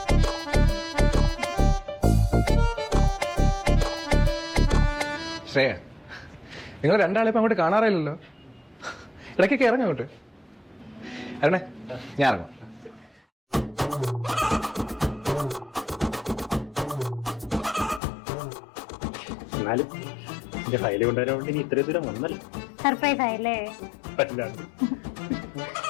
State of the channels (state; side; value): drops out; right; at 18.0 s